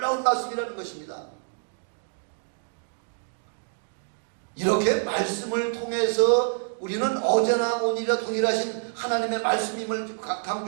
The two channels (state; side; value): silent; left; digital silence